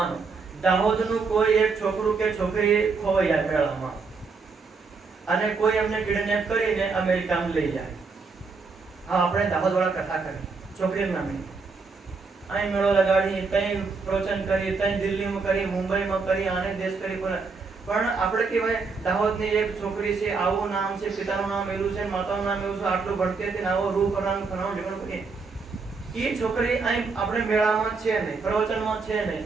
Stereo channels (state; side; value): quieter; left; 4.6 dB